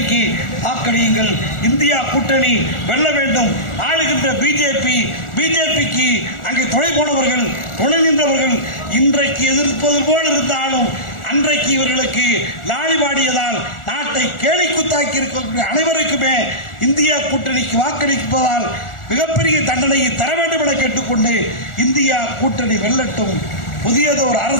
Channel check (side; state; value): right; late; 1.4 ms